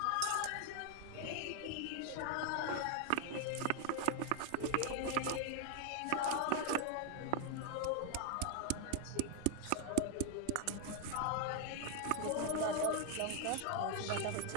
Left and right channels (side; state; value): both; different; correlation 0.00